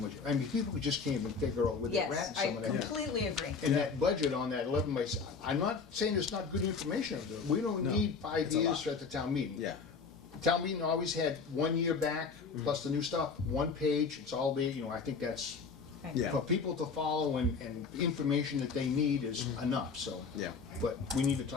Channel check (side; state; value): right; quieter; 5.1 dB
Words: I mean, people just came and figure out with their Yes, rats I some of that. completely agree. And that budget on that 11 by, I'm not saying it's not good information, we don't No, need 5 it's a years lot. at the town meeting. Yeah. Town meeting always had 1 year back, plus the new stuff, 1 page, it's all there, I think that's, Yeah. for people to follow and information that they need is enough, so. Yeah. But we need to